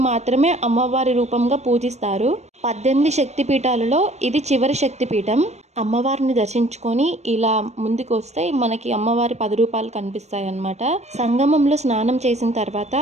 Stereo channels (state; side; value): late; left; 0.32 ms